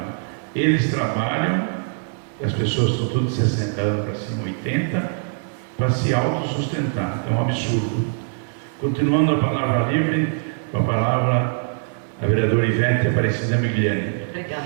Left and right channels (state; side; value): silent; left; digital silence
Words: Eles trabalham, as pessoas estão tudo de 60 anos para cima, 80, para se autossustentar. É um absurdo. Continuando a palavra livre, com a palavra a vereadora Ivete Aparecida Migliani.